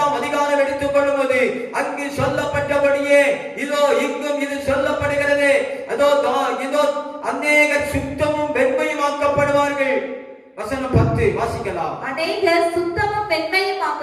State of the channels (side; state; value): both; identical; correlation 1.00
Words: அதிகாரம் எடுத்துக் கொள்ளும்போது அங்கு சொல்லப்பட்டபடியே இதோ இங்கும் இது சொல்லப்படுகிறது. அதோ இதோ அநேகர் சுத்தமும் வெண்மையும் ஆக்கப்படுவார்கள். வசனம் 10 வாசிக்கலாம். அநேகர் சுத்தமும் வெண்மையும்